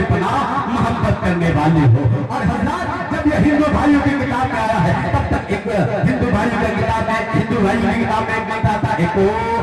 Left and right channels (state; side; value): identical; both; correlation 1.00